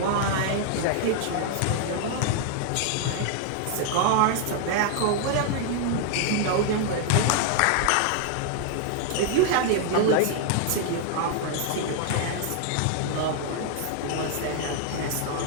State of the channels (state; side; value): different; both; correlation 0.00